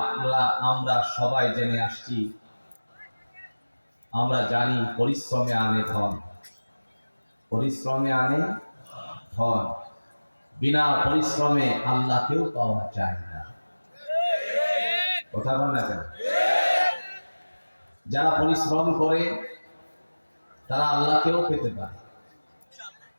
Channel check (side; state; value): both; inverted; correlation -1.00